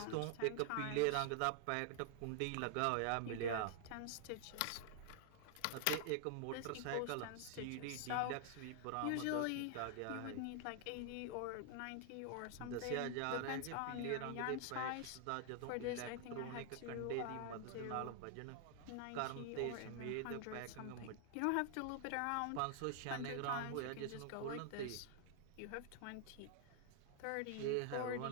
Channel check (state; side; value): different; both; correlation 0.00